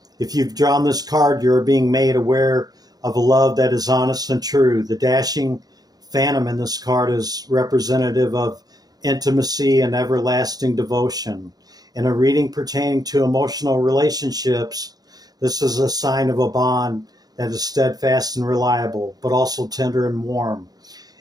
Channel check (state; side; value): late; left; 0.19 ms